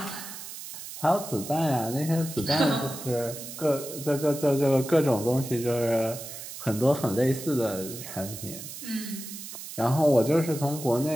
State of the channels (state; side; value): noise; right; hiss, 11 dB below the sound